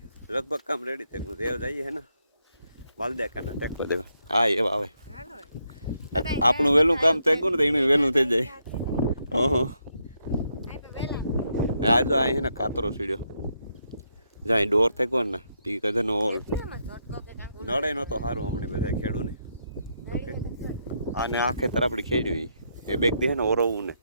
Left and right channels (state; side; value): inverted; both; correlation -0.79